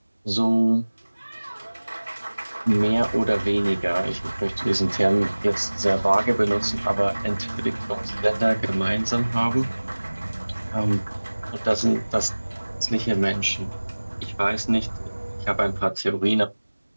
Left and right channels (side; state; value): both; inverted; correlation -1.00